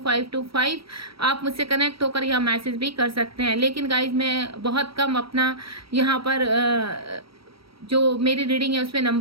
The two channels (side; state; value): left; late; 0.75 ms